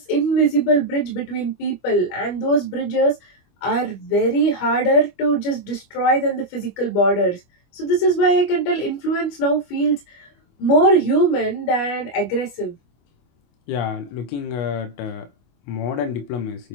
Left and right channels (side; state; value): right; late; 25 ms